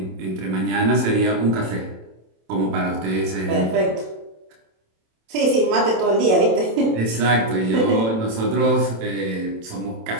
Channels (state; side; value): late; left; 27 ms